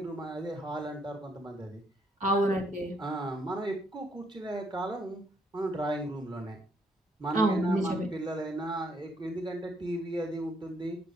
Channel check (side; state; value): both; normal; correlation 0.71